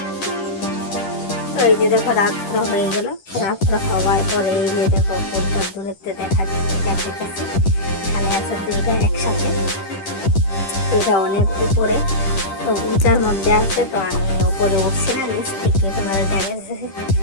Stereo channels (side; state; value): right; late; 10 ms